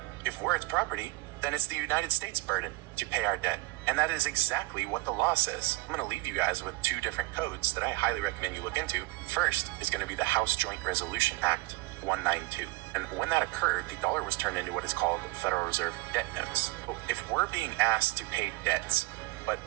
If we're its property, then it's the United States' burden to pay our debt. And that is exactly what the law says. I'm going to leave you guys with two different codes that I highly recommend you look into. First is going to be the House Joint Resolution Act 192. And when that occurred, the dollar was turned into what is called Federal Reserve debt notes. If we're being asked to pay debts, but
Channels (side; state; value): left; quieter; 21.8 dB